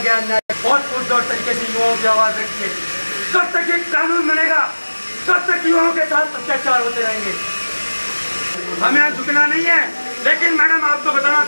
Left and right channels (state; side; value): inverted; both; correlation -1.00